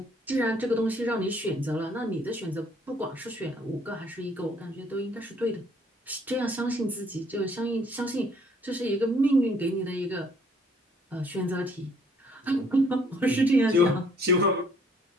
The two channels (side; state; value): both; normal; correlation 0.62